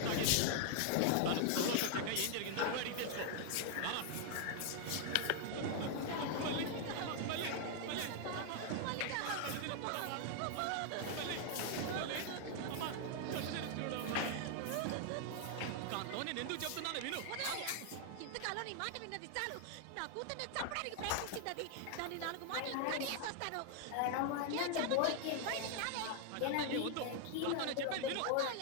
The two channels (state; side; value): different; both; correlation 0.00